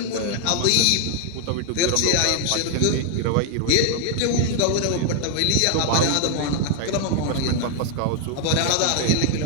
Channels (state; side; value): different; both; correlation 0.00